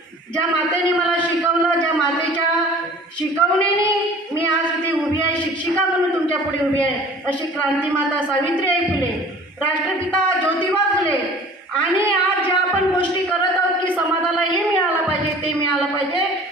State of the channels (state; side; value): normal; both; correlation 0.46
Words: ज्या मातेने मला शिकवलं, ज्या मातेच्या शिकवणीने मी आज इथे उभी आहे, शिक्षिका म्हणून तुमच्या पुढे उभी आहे, अशी क्रांतीमाता सावित्रीबाई फुले, राष्ट्रपिता ज्योतिबा फुले, आणि आज ज्या आपण गोष्टी करत आहोत की समाजाला हे मिळालं पाहिजे, ते मिळालं पाहिजे,